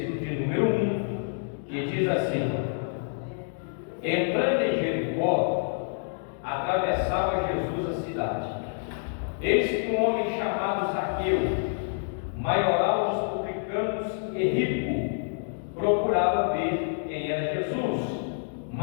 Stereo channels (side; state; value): right; silent; digital silence